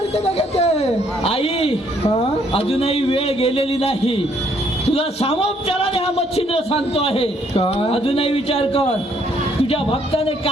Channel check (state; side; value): normal; both; correlation 0.67